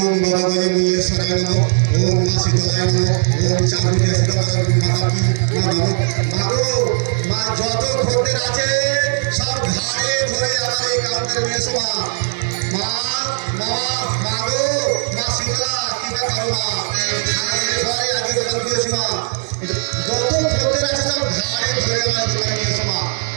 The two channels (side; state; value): left; silent; 67 dB below the other